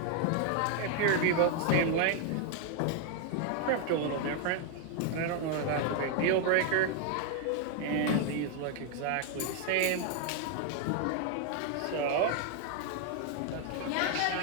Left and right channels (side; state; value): both; different; correlation 0.00